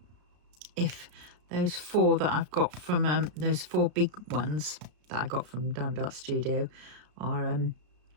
if those 4 that I've got from those 4 big ones that I got from Diamond Art Studio are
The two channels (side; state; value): left; late; 33 ms